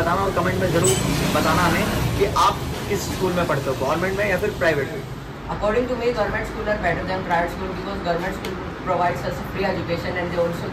और कमेंट में ज़रूर बताना हमें कि आप किस स्कूल में पढ़ते हो, गवर्नमेंट में या फिर प्राइवेट में। According to me, government schools are better than private school because government school provides us free education and they also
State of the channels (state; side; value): identical; both; correlation 1.00